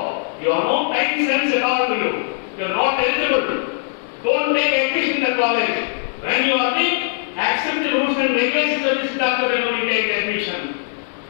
You have no time sense at all to you. You are not eligible. Don't take admission in the college. When you are the accept the rules and regulations of this doctor, then only take admission.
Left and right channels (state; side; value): silent; right; 66 dB below the other